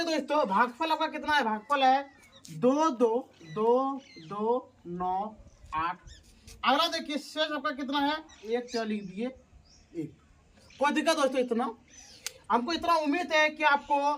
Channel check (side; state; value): both; identical; correlation 1.00